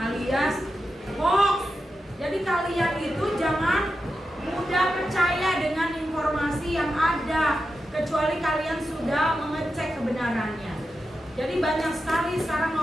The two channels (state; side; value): normal; both; correlation 0.89